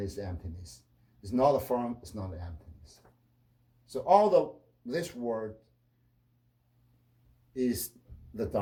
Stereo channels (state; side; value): identical; both; correlation 1.00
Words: emptiness. It's not a form, it's not an emptiness. So this word is the